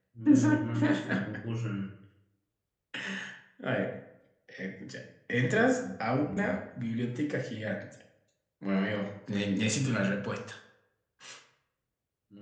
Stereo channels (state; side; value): identical; both; correlation 1.00